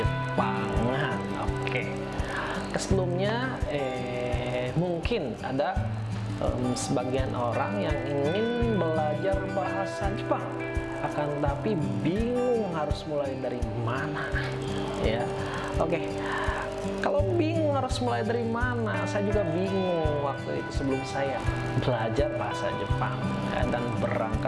Oke. Sebelumnya mungkin ada sebagian orang yang ingin belajar bahasa Jepang, akan tapi bingung harus mulai dari mana ya. Oke, kalau bingung harus mulai dari mana, saya juga bingung waktu itu sebelum saya belajar bahasa Jepang ya, dan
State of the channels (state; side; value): identical; both; correlation 1.00